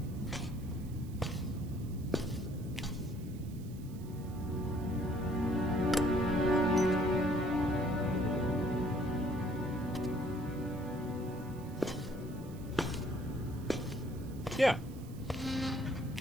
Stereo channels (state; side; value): noise; right; hiss, 23 dB below the sound